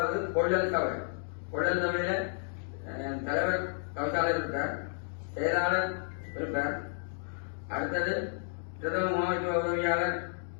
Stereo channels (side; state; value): right; silent; 56 dB below the other